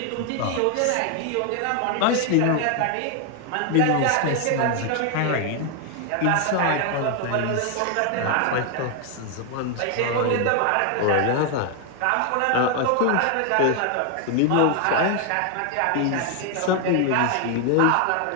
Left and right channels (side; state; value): both; different; correlation 0.01